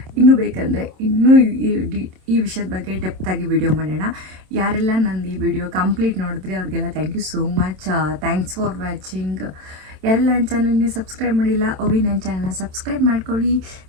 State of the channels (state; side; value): late; left; 27 ms